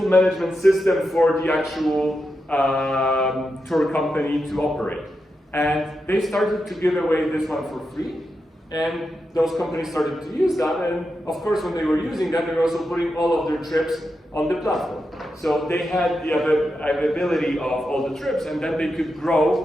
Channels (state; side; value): normal; both; correlation 0.87